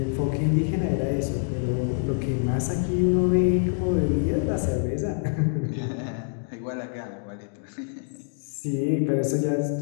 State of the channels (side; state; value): right; silent; digital silence